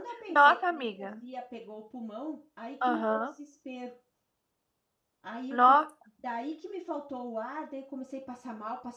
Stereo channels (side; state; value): both; identical; correlation 1.00